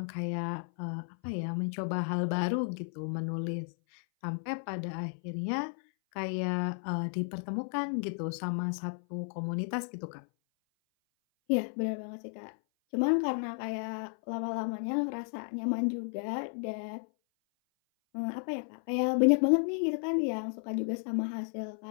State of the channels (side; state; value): right; silent; 56 dB below the other